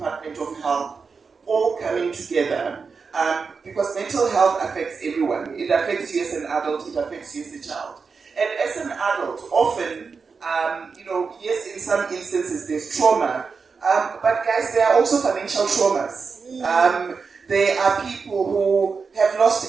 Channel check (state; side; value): quieter; left; 5.1 dB